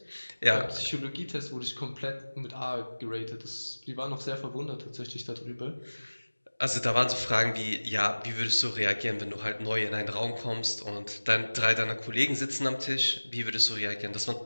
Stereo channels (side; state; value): both; inverted; correlation -1.00